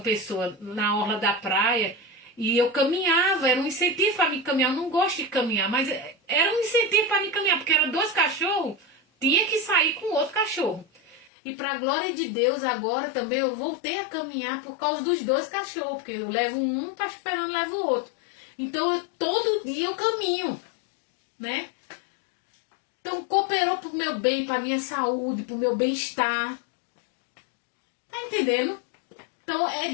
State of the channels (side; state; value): right; drops out; at 11.3 s